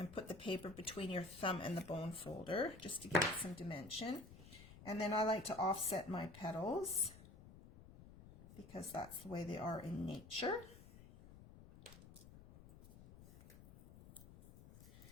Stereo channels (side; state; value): left; noise; rumble, 18 dB below the sound